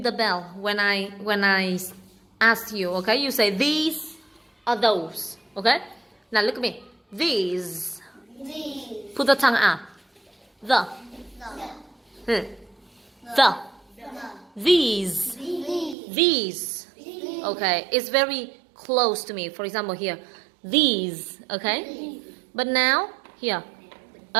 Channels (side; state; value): left; drops out; at 16.0 s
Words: the bell when I ask you. Okay, you say these or those. Okay, now look at me. These. These. Put the tongue out. The. The. The. The. These. These. These. These. Okay, it's very close to me. For example, here, these. Okay, but now here.